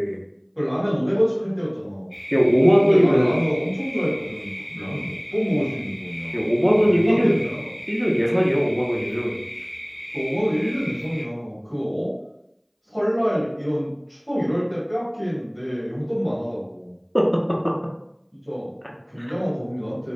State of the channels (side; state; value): both; identical; correlation 1.00